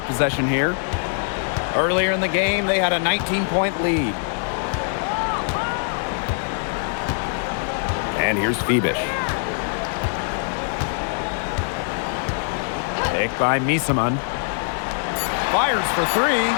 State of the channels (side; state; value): right; silent; 64 dB below the other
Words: possession here. Earlier in the game, they had a 19-point lead. And here's Fibish. Picked by Misaman. Fires for 3.